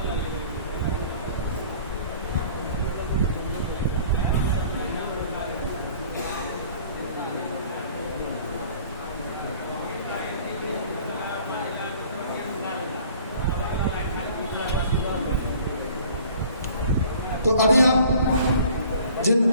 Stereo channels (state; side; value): inverted; both; correlation -0.51